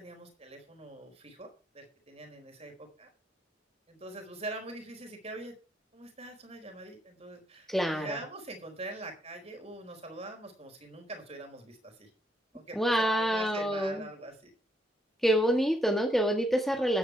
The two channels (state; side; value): normal; both; correlation 0.74